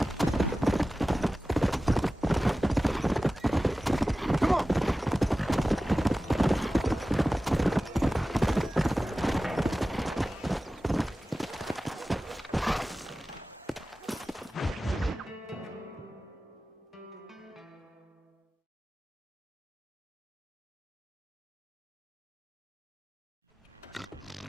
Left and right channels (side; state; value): both; normal; correlation 0.96